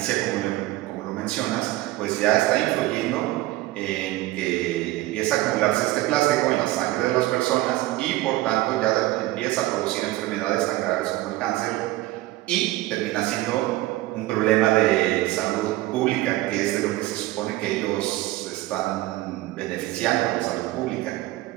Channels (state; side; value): quieter; left; 17.6 dB